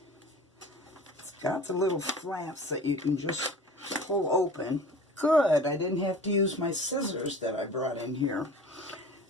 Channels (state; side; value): normal; both; correlation 0.41